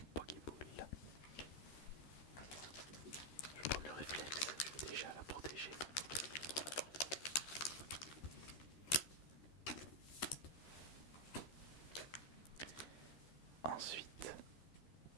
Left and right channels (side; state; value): right; late; 13 ms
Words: Pokéball. Je vais prendre le réflexe. Je vais déjà la protéger. Ensuite,